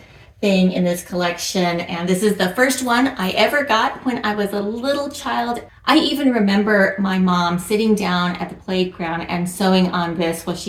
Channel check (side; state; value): both; identical; correlation 1.00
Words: thing in this collection, and this is the first one I ever got when I was a little child. I even remember my mom sitting down at the playground and sewing on this while